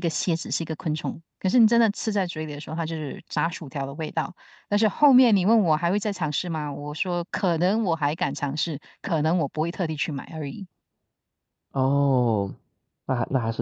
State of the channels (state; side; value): identical; both; correlation 1.00